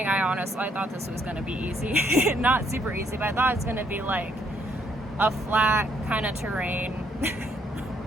I thought this was going to be easy. Not super easy, but I thought it's going to be like a flat kind of terrain,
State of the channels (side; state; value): both; normal; correlation 0.70